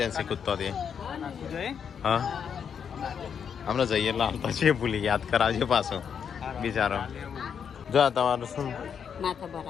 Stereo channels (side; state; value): right; quieter; 7.4 dB